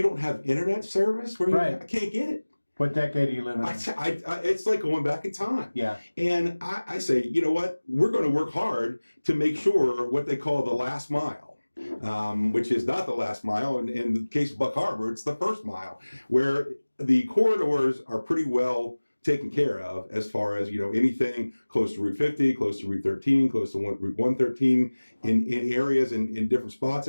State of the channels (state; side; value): inverted; both; correlation -1.00